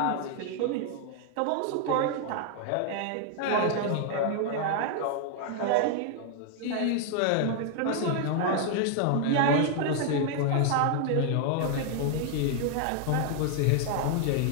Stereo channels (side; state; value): both; different; correlation 0.00